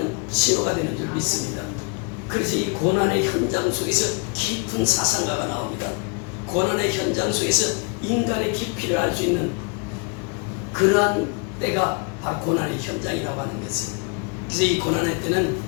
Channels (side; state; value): right; quieter; 34.7 dB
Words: 신호가 되는 줄 믿습니다. 그래서 이 고난의 현장 속에서 깊은 사상가가 나옵니다. 고난의 현장 속에서 인간의 깊이를 알 수 있는 그러한 때가 바로 고난의 현장이라고 하는 것이에요. 그래서 이 고난의 때는